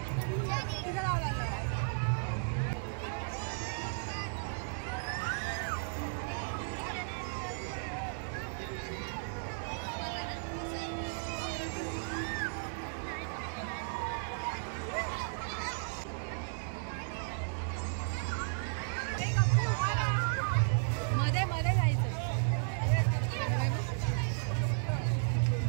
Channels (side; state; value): left; silent; digital silence